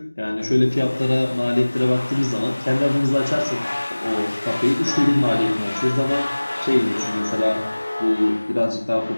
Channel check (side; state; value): both; inverted; correlation -1.00